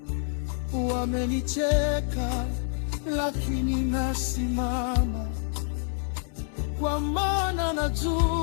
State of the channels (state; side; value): silent; right; 60 dB below the other